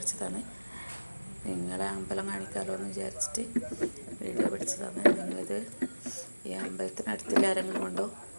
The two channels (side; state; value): both; inverted; correlation -1.00